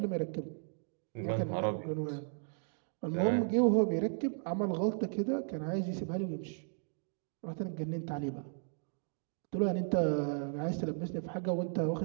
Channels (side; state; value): left; silent; 54 dB below the other